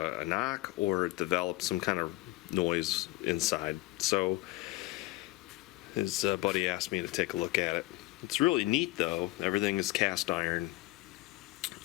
it developed some kind of noise inside. So his buddy asked me to take a look at it. It's really neat though. Everything is cast iron.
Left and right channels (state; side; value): quieter; right; 19.1 dB